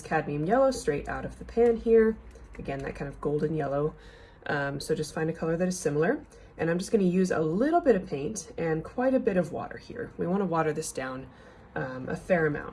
cadmium yellow straight out of the pan here. Again, that kind of golden yellow. So just find a color that is similar. And I'm just going to use a little bit of paint and quite a bit of water here. We want to water this down a fair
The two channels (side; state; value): both; identical; correlation 1.00